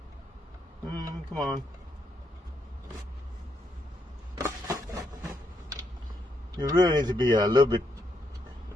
Come on. You really need to be a little bit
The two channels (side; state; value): both; normal; correlation 0.78